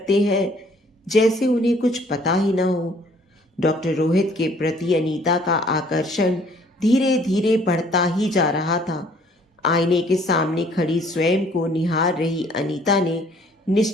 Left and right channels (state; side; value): normal; both; correlation 0.59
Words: हैं जैसे उन्हें कुछ पता ही ना हो। डॉक्टर रोहित के प्रति अनीता का आकर्षण धीरे धीरे बढ़ता ही जा रहा था। आईने के सामने खड़ी स्वयं को निहार रही अनीता ने